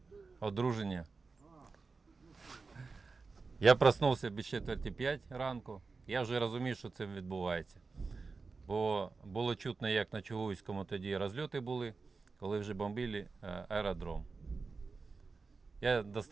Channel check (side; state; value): left; quieter; 4.3 dB